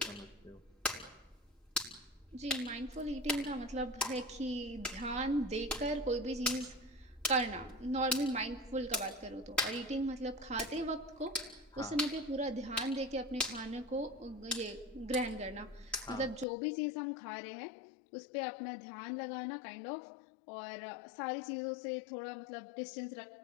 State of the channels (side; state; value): right; drops out; at 16.4 s